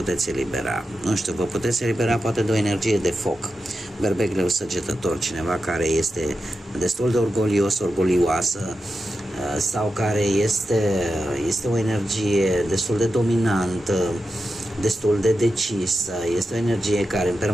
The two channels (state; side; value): normal; both; correlation 0.90